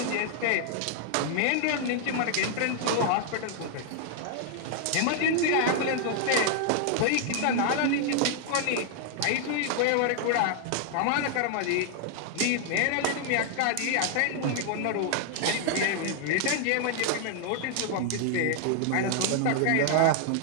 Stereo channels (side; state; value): both; different; correlation 0.00